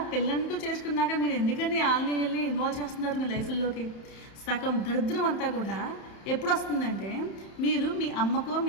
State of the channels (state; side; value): late; right; 31 ms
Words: పెళ్ళంటూ చేసుకున్నాక మీరు ఎందుకని వాళ్ళని ఇన్వాల్వ్ చేస్తున్నారు మీ లైఫ్లోకి? సగం దరిద్రం అంతా కూడా ఎప్పుడు వస్తుందంటే, మీరు మీ అమ్మకో